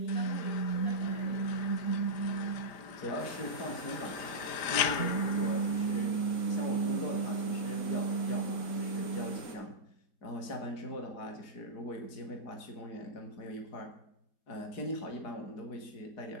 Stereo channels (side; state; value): right; late; 4.9 ms